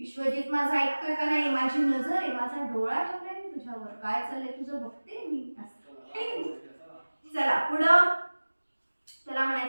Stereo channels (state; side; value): inverted; both; correlation -1.00